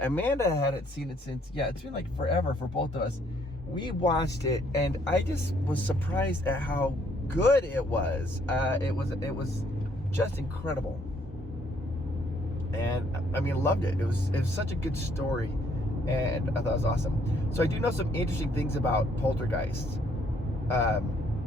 hadn't seen it since, it's been like forever for both of us. We watched it, and I just was surprised at how good it was. It was just incredible. And, I mean, loved it. It was such a good story, and I thought it was awesome. So I do know some interesting things about Poltergeist.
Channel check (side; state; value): both; normal; correlation 0.66